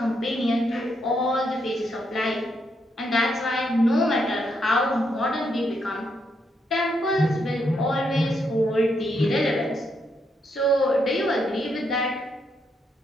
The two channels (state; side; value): normal; both; correlation 0.78